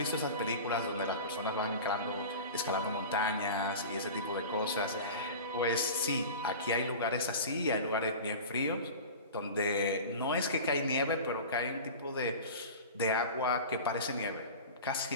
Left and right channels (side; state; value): both; inverted; correlation -0.34